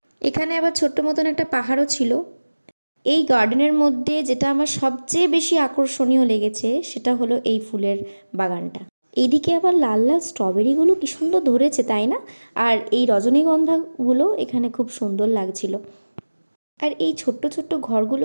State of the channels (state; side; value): inverted; both; correlation -1.00